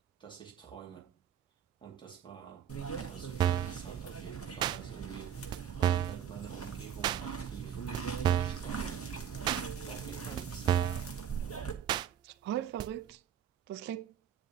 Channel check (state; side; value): quieter; left; 9.4 dB